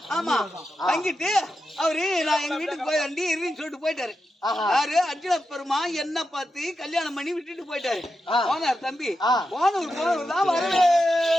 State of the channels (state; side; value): normal; both; correlation 0.88